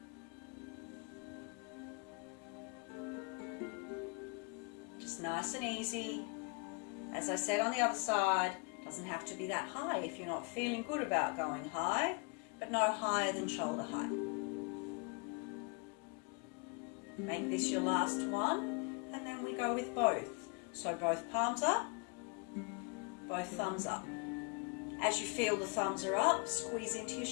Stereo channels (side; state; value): right; quieter; 34.5 dB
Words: Nice and easy. As I said on the other side, doesn't have to be that high if you're not feeling good about going high, but no higher than shoulder height. Make this your last one, and then we go with both. So both palms up, both thumbs up. As you feel the thumbs are up, squeeze into your